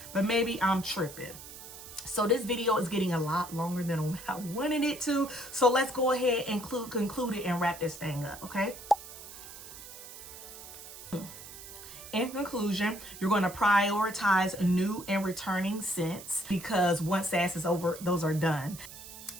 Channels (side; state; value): right; noise; hiss, 14 dB below the sound